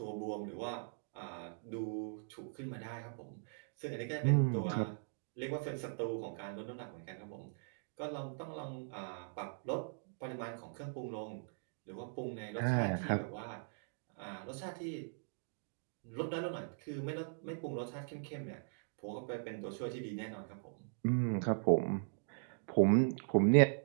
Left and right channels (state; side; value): silent; left; digital silence